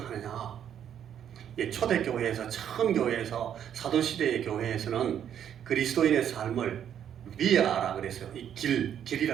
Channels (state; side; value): quieter; left; 9.4 dB